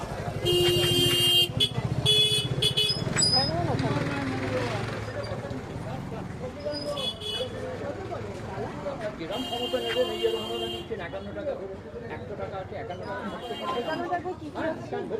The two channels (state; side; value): identical; both; correlation 1.00